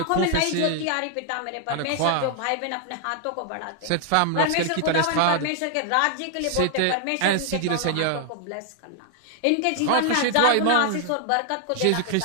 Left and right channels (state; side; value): different; both; correlation 0.00